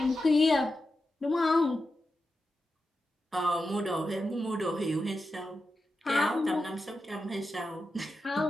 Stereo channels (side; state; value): both; normal; correlation 0.89